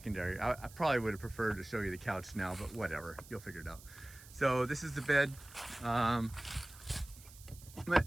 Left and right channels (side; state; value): right; noise; hiss, 19 dB below the sound